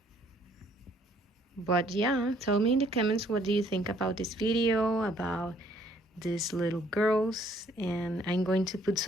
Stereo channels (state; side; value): normal; both; correlation 0.63